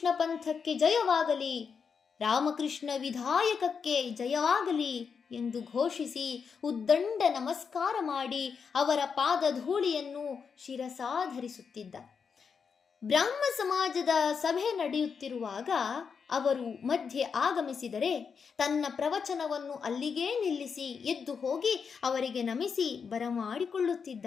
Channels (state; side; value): quieter; right; 6.1 dB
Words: ಪಂಥಕ್ಕೆ ಜಯವಾಗಲಿ, ರಾಮಕೃಷ್ಣ ವಿಧಾಯಕಕ್ಕೆ ಜಯವಾಗಲಿ ಎಂದು ಘೋಷಿಸಿ ಉದ್ದಂಡ ನಮಸ್ಕಾರ ಮಾಡಿ ಅವರ ಪಾದಧೂಳಿಯನ್ನು ಶಿರಸಾಧರಿಸುತ್ತಿದ್ದ. ಬ್ರಾಹ್ಮ ಸಮಾಜದ ಸಭೆ ನಡೆಯುತ್ತಿರುವಾಗ ಅವರು ಮಧ್ಯೆ ಆಗಮಿಸಿದರೆ ತನ್ನ ಪ್ರವಚನವನ್ನು ಅಲ್ಲಿಗೇ ನಿಲ್ಲಿಸಿ ಎದ್ದು ಹೋಗಿ ಅವರಿಗೆ ನಮಿಸಿ ಬರಮಾಡಿಕೊಳ್ಳುತ್ತಿದ್ದ.